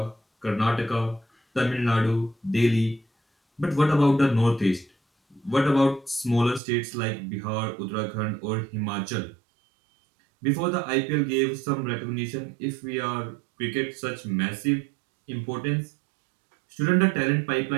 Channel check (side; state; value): left; drops out; at 6.6 s